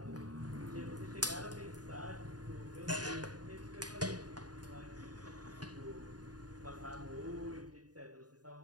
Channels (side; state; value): left; late; 0.69 ms